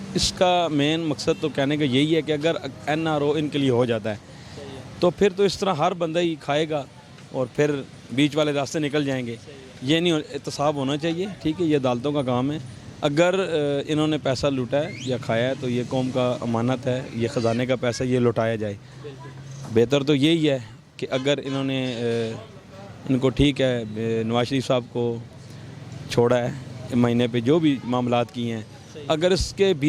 इसका मेन मकसद तो कहने का यही है कि अगर एनआरओ इनके लिए हो जाता है तो फिर तो इस तरह हर बंदा ही खाएगा और फिर बीच वाले रास्ते निकल जाएंगे। ये नहीं, एहतसाब होना चाहिए। ठीक है, ये अदालतों का काम है। अगर इन्होंने पैसा लूटा है या खाया है तो ये कौम का अमानत है, ये ख़जाने का पैसा ये लौटाया जाए। बेहतर तो यही है कि अगर इन्होंने इनको, ठीक है, नवाज शरीफ साहब को छोड़ा है महीने पे जो भी मामलात किए हैं, अगर इसके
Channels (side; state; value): both; identical; correlation 1.00